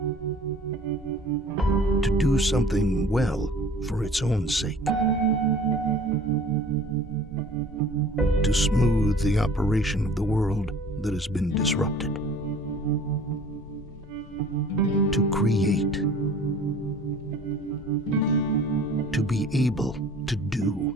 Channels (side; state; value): both; normal; correlation 0.48